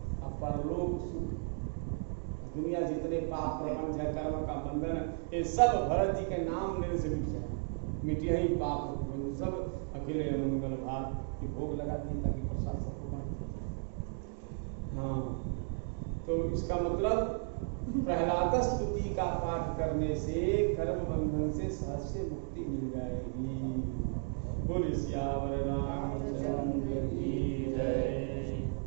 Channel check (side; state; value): left; silent; 55 dB below the other